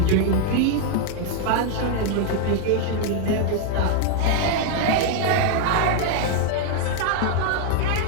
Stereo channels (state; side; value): different; both; correlation 0.00